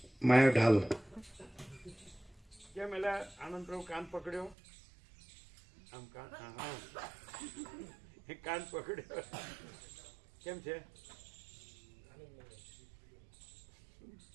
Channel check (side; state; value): left; drops out; at 4.5 s